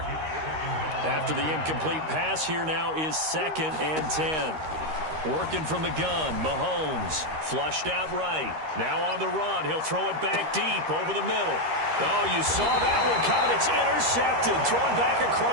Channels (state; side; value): late; left; 13 ms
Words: After the incomplete pass, here now is 2nd and 10. Working from the gun, Mahomes. Flushed out right. Now on the run. He'll throw it back deep over the middle. Oh, you saw that one coming. It's intercepted. Thrown back